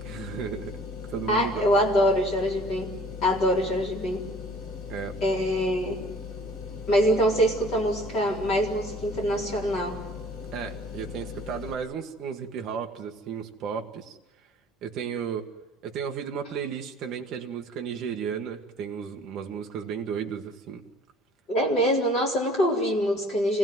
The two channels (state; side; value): normal; both; correlation 0.51